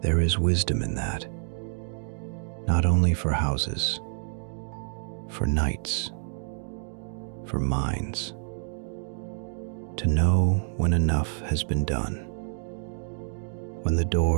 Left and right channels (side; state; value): left; silent; digital silence